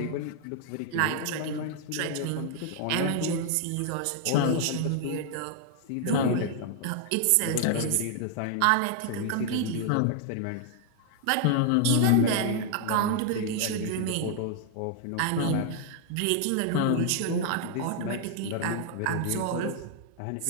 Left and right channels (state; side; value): different; both; correlation 0.00